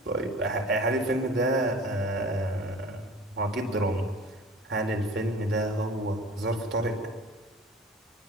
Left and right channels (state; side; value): normal; both; correlation 0.42